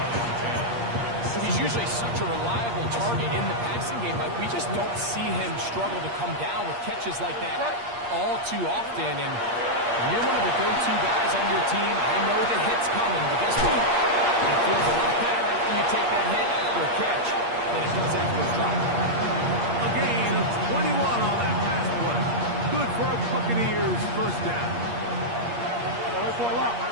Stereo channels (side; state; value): left; late; 8.5 ms